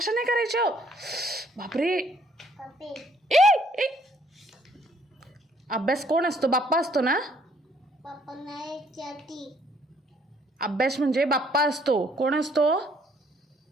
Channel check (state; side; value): normal; both; correlation 0.65